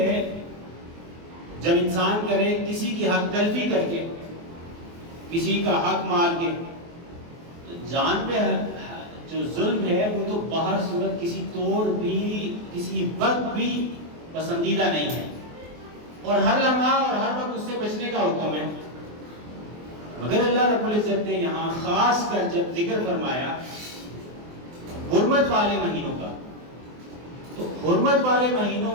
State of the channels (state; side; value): late; left; 24 ms